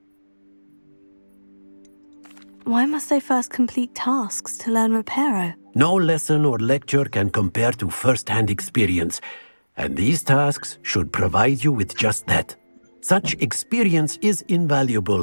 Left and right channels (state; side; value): inverted; both; correlation -1.00